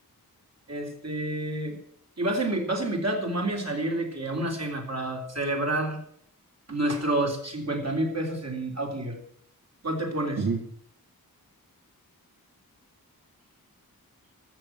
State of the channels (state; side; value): normal; both; correlation 0.27